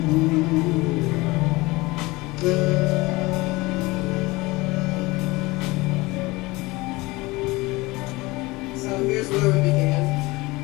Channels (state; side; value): quieter; right; 22.1 dB